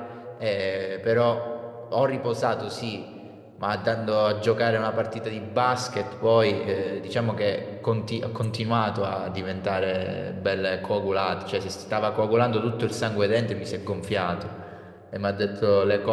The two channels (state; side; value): identical; both; correlation 1.00